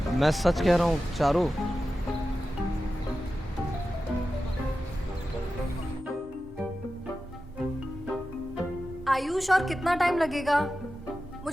मैं सच कह रहा हूँ चारू। आयुष, और कितना टाइम लगेगा?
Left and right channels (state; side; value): normal; both; correlation 0.93